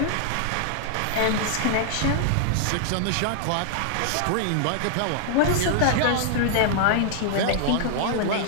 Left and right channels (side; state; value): both; different; correlation -0.01